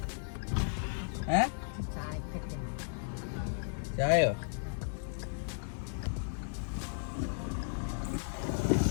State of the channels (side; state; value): right; silent; digital silence